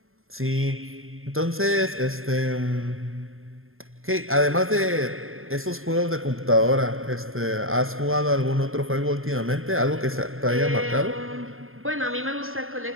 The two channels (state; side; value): late; left; 0.60 ms